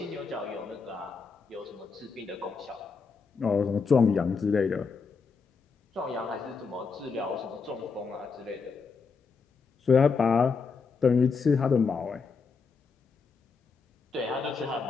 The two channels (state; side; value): quieter; right; 5.1 dB